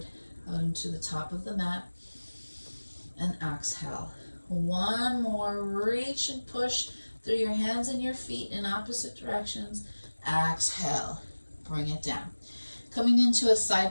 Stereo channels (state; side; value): inverted; both; correlation -1.00